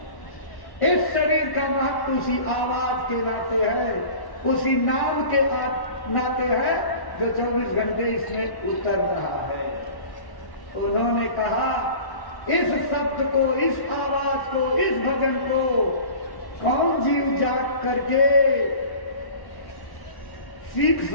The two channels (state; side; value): late; right; 1.1 ms